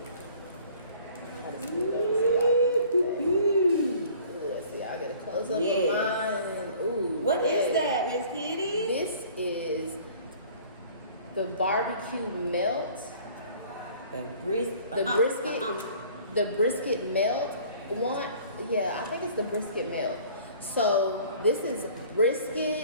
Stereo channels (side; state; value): both; inverted; correlation -0.51